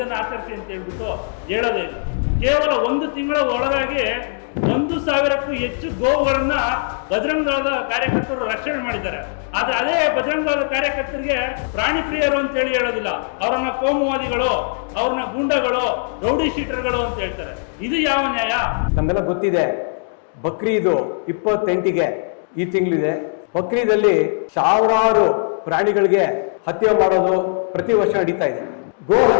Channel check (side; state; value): right; silent; digital silence